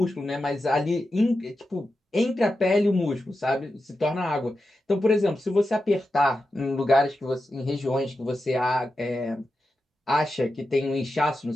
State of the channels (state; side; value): normal; both; correlation 0.90